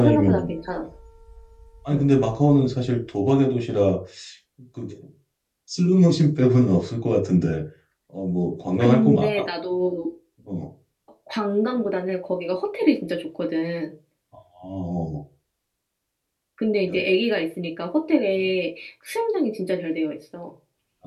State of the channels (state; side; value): identical; both; correlation 1.00